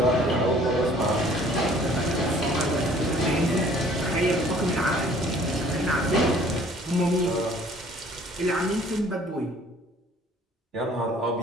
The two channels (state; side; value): normal; both; correlation 0.55